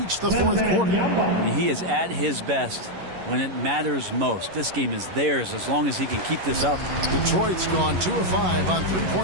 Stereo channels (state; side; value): late; left; 11 ms